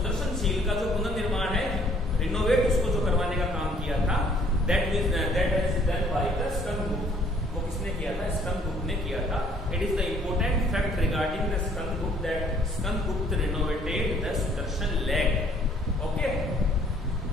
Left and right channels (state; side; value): normal; both; correlation 0.61